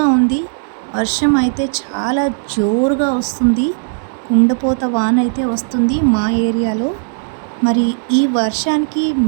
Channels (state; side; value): silent; left; 69 dB below the other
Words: ఉంది. వర్షం అయితే చాలా జోరుగా వస్తుంది. కుండపోత వాన అయితే వస్తుంది మా ఏరియాలో. మరి ఈ వర్షానికి